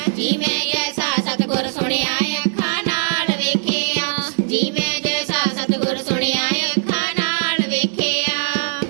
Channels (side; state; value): left; silent; digital silence